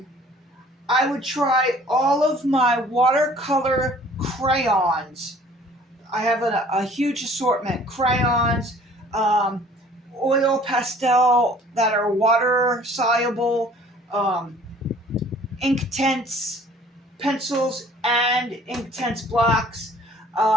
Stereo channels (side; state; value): both; normal; correlation 0.53